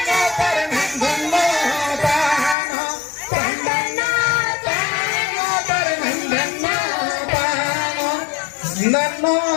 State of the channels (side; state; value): right; drops out; at 2.6 s